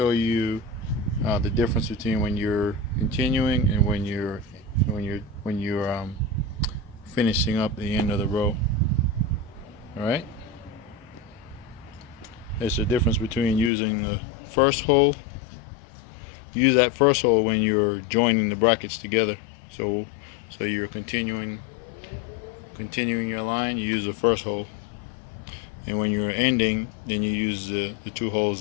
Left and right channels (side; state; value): right; drops out; at 13.7 s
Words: you the difference between when you're continuing and when you're finishing up the end of the row. Alright, there's a difference between using the first hole. Use that first hole when you're joining the brackets together. So you're continuing your line, you use the first hole. And when you're ending, then you use the two holes